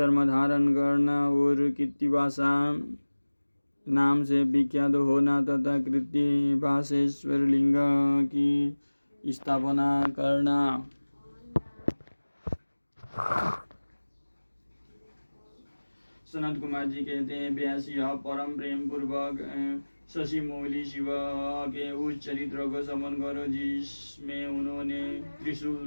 धारण करना और कृत्तिवासा नाम से विख्यात होना तथा कृत्तिवासेश्वर लिंग की स्थापना करना। सनत कुमार जी कहते हैं, व्यास यह परम प्रेम पूर्वक शशि मौली शिव के उस चरित्र को समन करो जिसमें उन्होंने त्रिशूल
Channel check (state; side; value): inverted; both; correlation -1.00